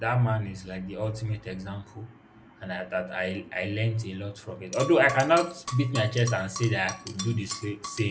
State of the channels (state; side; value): identical; both; correlation 1.00